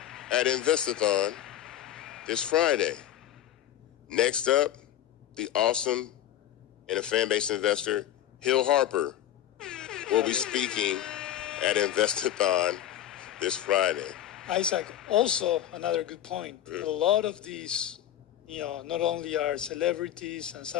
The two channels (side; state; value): right; quieter; 11.6 dB